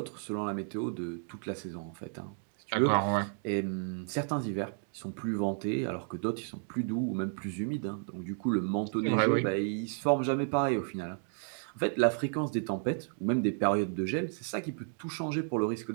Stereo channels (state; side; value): silent; left; 56 dB below the other